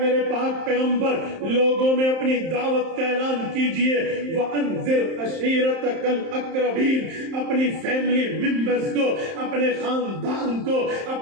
میرے پاک پیغمبر لوگوں میں اپنی دعوت کا اعلان کیجئے، وَأَنذِرْ عَشِيرَتَكَ الْأَقْرَبِينَ، اپنی فیملی ممبرز کو، اپنے خاندان کو،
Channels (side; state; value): left; late; 31 ms